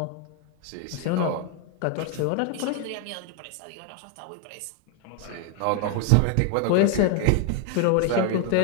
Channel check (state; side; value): different; both; correlation 0.01